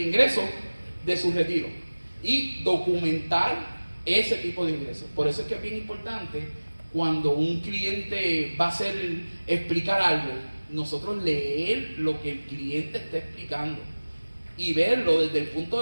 ingreso de su retiro y documentar ese tipo de ingresos. Por eso es que es bien importante cuando un cliente va a explicar algo, nosotros leer lo que el cliente está explicando y verlo desde el punto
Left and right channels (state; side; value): inverted; both; correlation -1.00